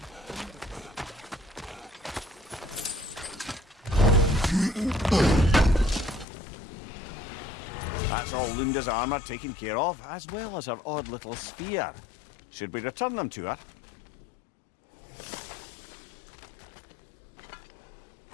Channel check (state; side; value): drops out; right; at 6.2 s